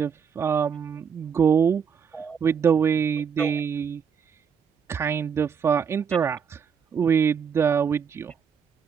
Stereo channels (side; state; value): left; quieter; 6.9 dB